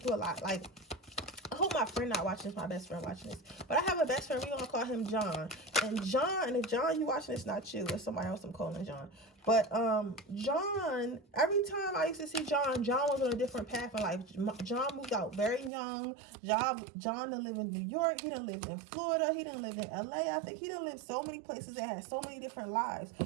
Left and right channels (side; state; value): left; drops out; at 15.7 s